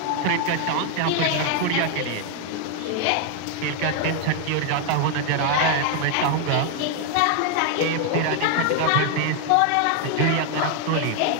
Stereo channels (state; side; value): different; both; correlation 0.00